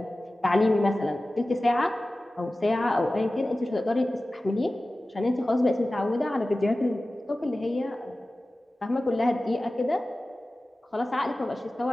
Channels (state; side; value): normal; both; correlation 0.96